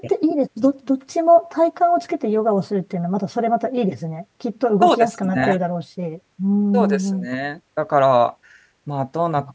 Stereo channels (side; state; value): both; identical; correlation 1.00